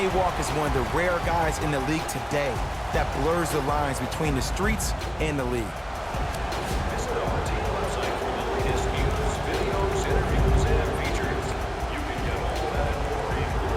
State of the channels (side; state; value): both; identical; correlation 1.00